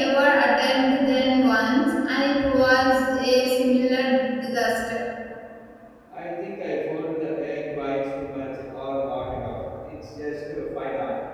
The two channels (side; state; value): both; identical; correlation 1.00